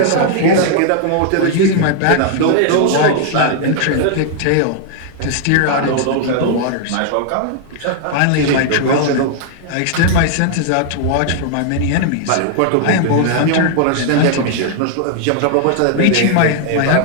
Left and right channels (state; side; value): different; both; correlation 0.00